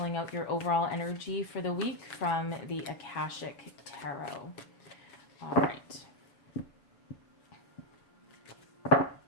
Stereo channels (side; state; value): right; late; 7.4 ms